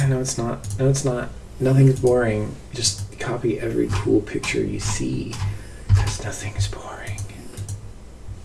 No, it's not. No, it's not. Nothing's boring. Just copy every cool picture you see, because nothing's boring.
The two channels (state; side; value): identical; both; correlation 1.00